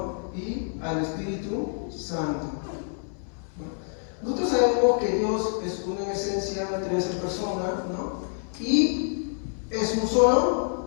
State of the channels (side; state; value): right; silent; 60 dB below the other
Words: Y al Espíritu Santo. ¿No? Nosotros sabemos que Dios es uno en esencia, tres en persona, ¿no? Y es un